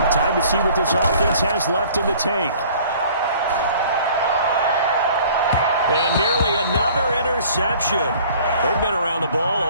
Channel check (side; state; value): both; inverted; correlation -0.52